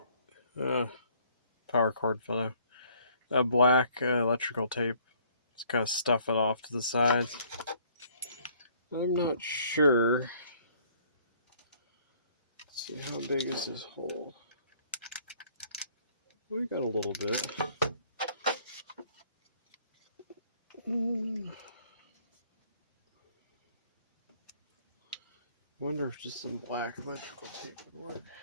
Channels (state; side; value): inverted; both; correlation -0.60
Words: power cord fell out. A black electrical tape. Just kind of stuff it off to the sides. I'm not sure. Let's see, how big is this hole? We got a little bit. Wonder if just some black electrical tape would work.